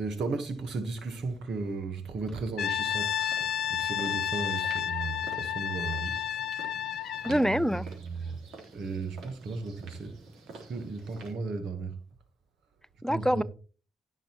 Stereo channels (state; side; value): normal; both; correlation 0.72